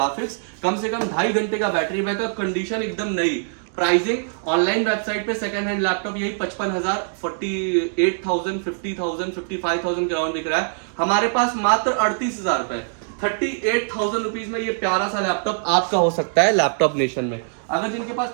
कम से कम 2.5 घंटे का बैटरी बैकअप, कंडीशन एकदम नई। प्राइसिंग ऑनलाइन वेबसाइट पे सेकंड हैंड लैपटॉप यही 55,000, 48,000, 50,000, 55,000 के अराउंड दिख रहा है। हमारे पास मात्र 38,000 रुपए, 38,000 रुपीज में ये प्यारा सा लैपटॉप आपका हो सकता है लैपटॉप नेशन में। अगर जिनके पास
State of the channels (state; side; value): silent; left; digital silence